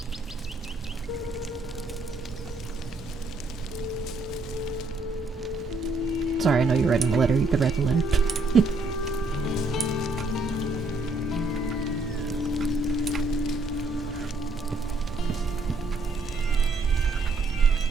Sorry, I know you're writing the letter. You could write the letter.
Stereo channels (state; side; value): quieter; left; 3.1 dB